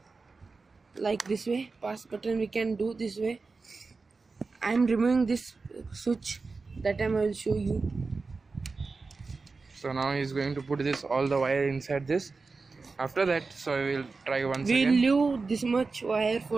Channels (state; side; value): quieter; left; 4.1 dB